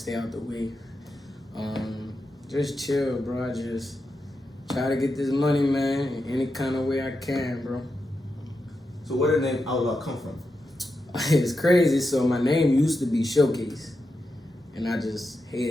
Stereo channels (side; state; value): both; normal; correlation 0.88